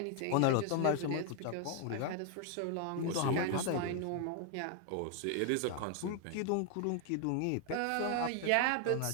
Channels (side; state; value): both; different; correlation 0.00